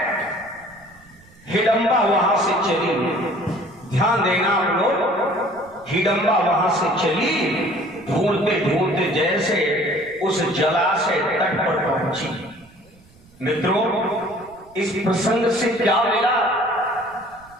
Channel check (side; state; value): right; noise; rumble, 27 dB below the sound